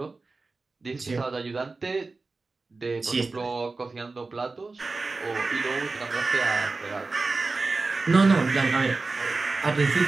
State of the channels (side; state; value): left; quieter; 3.8 dB